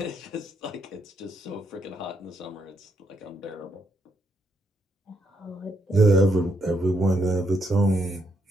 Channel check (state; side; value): normal; both; correlation 0.77